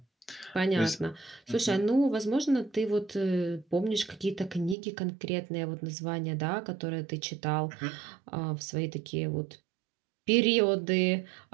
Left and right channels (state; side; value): drops out; left; at 4.8 s